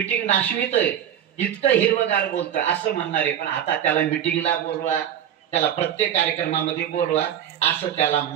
नाशवितय, इतकं हिरवगार बोलतोय असं म्हणणार आहे. पण आता त्याला मिटिंगला बोलवा, त्याला प्रत्येक कार्यक्रमामध्ये बोलवा, असं त्याला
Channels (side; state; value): left; quieter; 10.1 dB